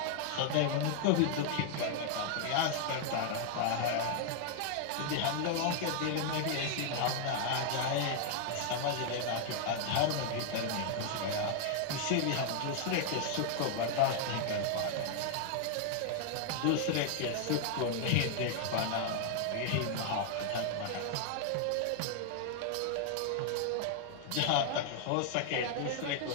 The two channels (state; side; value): different; both; correlation 0.00